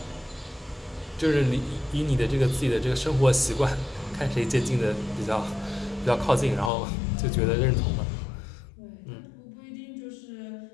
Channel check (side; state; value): right; drops out; at 6.7 s